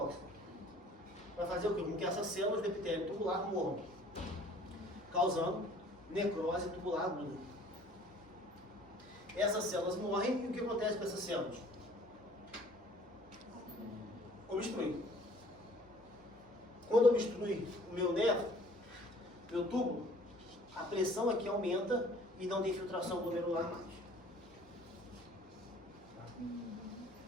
Vai fazer o quê? Com que essas células do epitélio tubular morram, causando necrose tubular aguda. Essas células morrem e o que acontece com essas células? Obstrui. Quando obstrui o meu nervo, meu túbulo, a pressão aqui aumenta e não tem filtração glomerular mais.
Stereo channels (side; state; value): both; normal; correlation 0.54